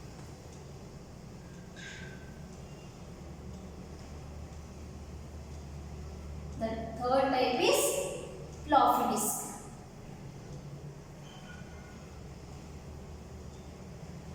The third type is floppy disk.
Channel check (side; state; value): both; identical; correlation 1.00